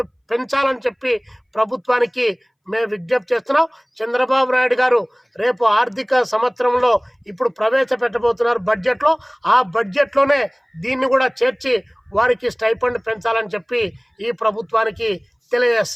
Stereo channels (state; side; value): identical; both; correlation 1.00